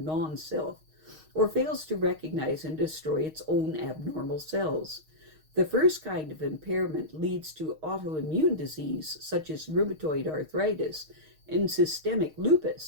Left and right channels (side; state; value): left; late; 6.4 ms